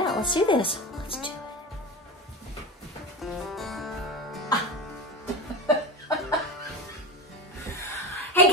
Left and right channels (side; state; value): both; normal; correlation 0.24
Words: Let's do this. Let's do it. Hey